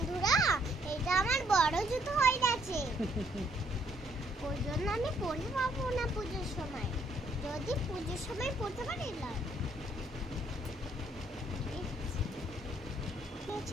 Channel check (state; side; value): normal; both; correlation 0.68